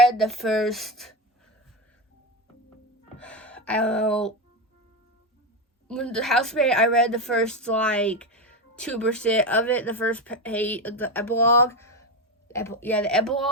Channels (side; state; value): both; normal; correlation 0.15